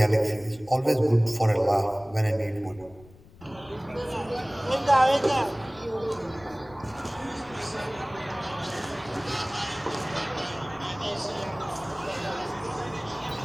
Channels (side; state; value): left; noise; rumble, 23 dB below the sound